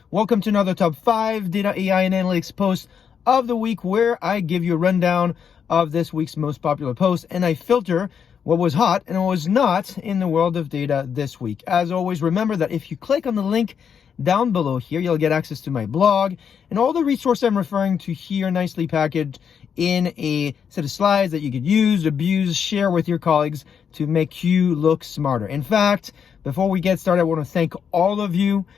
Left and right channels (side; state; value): right; quieter; 7.4 dB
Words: Welcome to another top 5 data, AI, and analytics post of the week, where I give you a rundown of this week's most popular posts, and I filter what was hot and what was not in the world of data this week. As always, remember that if you click on the link down below here, you'll get access to my blog and all the resources I'm referring to here, nicely packaged in a set of slides that you could use, abuse, share with your colleagues to make you look smarter. In fact, before we get started, I want to thank all of you